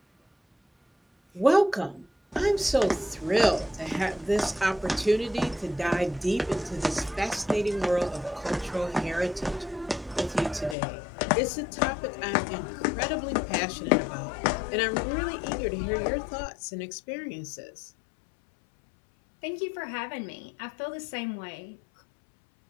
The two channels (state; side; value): drops out; right; at 10.8 s